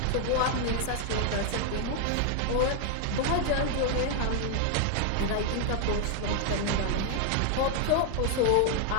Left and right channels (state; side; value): different; both; correlation 0.00